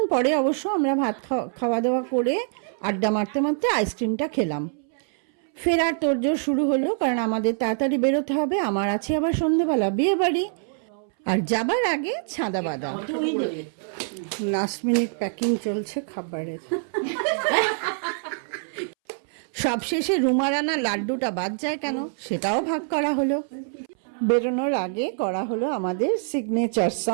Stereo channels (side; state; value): left; silent; 62 dB below the other